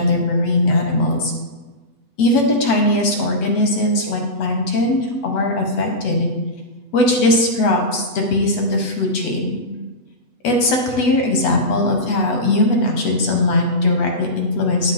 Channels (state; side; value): late; right; 8.1 ms